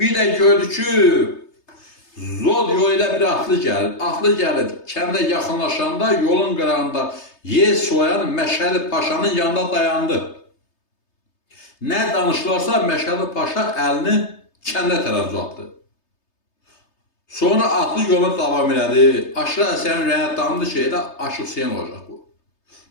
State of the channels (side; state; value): right; late; 3.3 ms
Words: də gördü ki, Zod yolu ilə bir atlı gəlir. Atlı gəlir, kəndə yaxınlaşanda yolun qırağında yer soyan Məşədi Paşanın yanında dayandı. Nə danışılarsa Məşədi Paşa əlini kəndə tərəf uzatdı. Sonra atlı yoluna davam elədi. Aşıq Ələsgərin ürəyinə damdı ki, elə Aşıq Hüseyin olacaq bu.